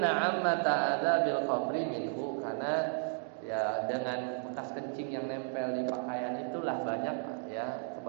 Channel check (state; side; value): silent; left; digital silence